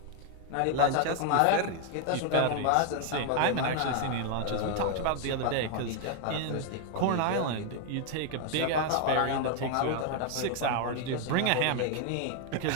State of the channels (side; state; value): both; different; correlation 0.00